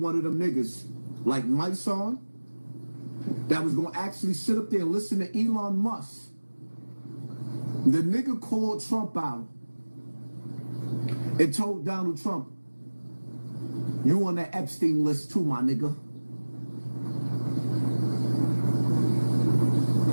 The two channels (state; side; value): inverted; both; correlation -1.00